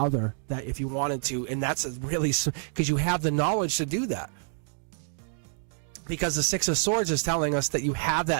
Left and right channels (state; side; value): silent; left; digital silence